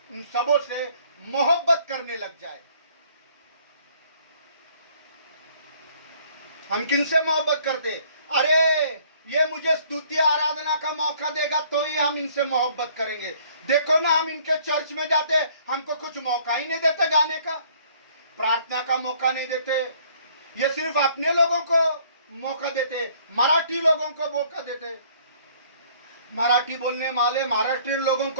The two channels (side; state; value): both; inverted; correlation -0.59